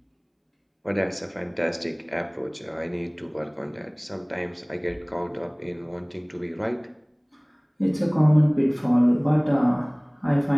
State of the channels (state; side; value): identical; both; correlation 1.00